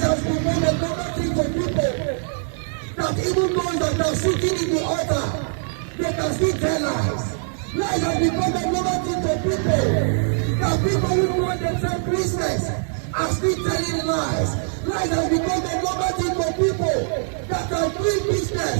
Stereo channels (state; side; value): silent; left; 64 dB below the other